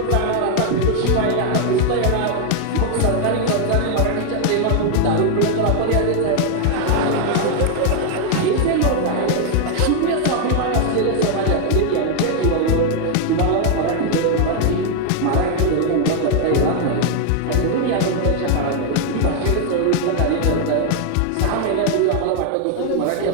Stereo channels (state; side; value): different; both; correlation 0.00